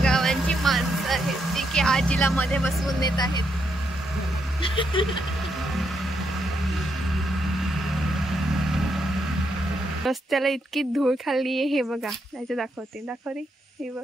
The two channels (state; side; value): normal; both; correlation 0.79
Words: गावांची माणसं आहेत जी की आजीला मध्ये बसवून देत आहेत. रस्त्याला इतकी धूळ खाल्ली आहे. हे बघा, त्याचे दाखव रे. हे